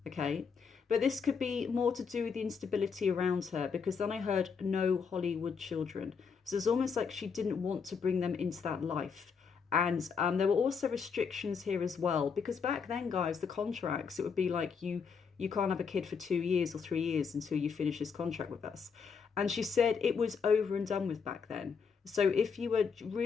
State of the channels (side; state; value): right; quieter; 5.9 dB